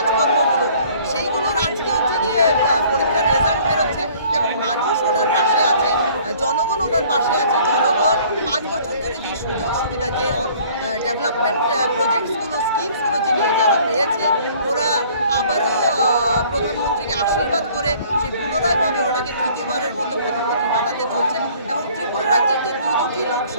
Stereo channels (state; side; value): inverted; both; correlation -0.55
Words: সেইগুলোর আজকে হচ্ছে গিয়ে পরীক্ষার রেজাল্ট বেরোচ্ছে এবং মানুষ ওনার পাশে আছে, জনগণ ওনার পাশে আছে। জনগণ 5 বছর ধরে যে সুযোগ সুবিধা, যে ডেভেলপমেন্ট প্রজেক্টসগুলো, স্কিমসগুলো যে নিয়ে যারা পেয়েছে, ওরা আবারও প্রধানমন্ত্রীকে আশীর্বাদ করে সে পুনরায়ভাবে ওনাকে তৃতীয়বারের মতো প্রধানমন্ত্রী বানাতে চলছে। এবং ত্রিপুরা রাজ্যের যে দুটি